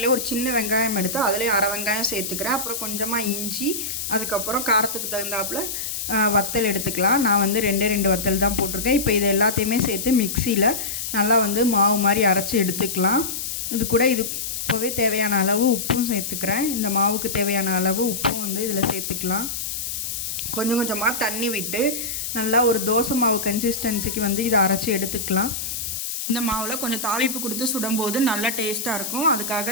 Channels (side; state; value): left; noise; hiss, 4 dB below the sound